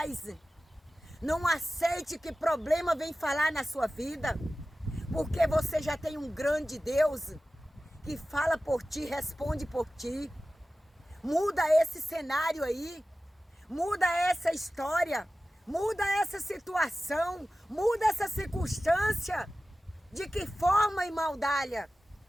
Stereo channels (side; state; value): both; normal; correlation 0.95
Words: não aceite que problema venha falar na sua vida, porque você já tem um grande Deus que fala por ti, responde por ti. Muda esse cenário aí, muda essa história, muda essa situação, muda essa circunstância. De que forma, irmã Dália?